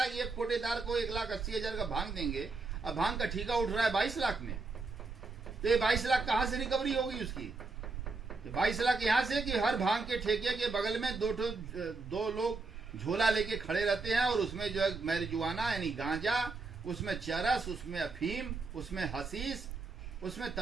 एक कोटेदार को 1,80,000 का भांग देंगे, अब भांग का ठेका उठ रहा है 22 लाख में। तो ये 22 लाख कहां से रिकवरी होगी उसकी? 22 लाख यहां से कि हर भांग के ठेके के बगल में 2 लोग झोला लेके खड़े रहते हैं, और उसमें जो है मैरिजुआना यानी गांजा उसमें चरस, उसमें अफीम, उसमें हसीस, उसमें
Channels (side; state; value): left; quieter; 3.8 dB